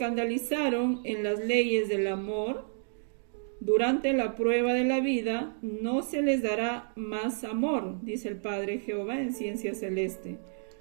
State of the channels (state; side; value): silent; left; digital silence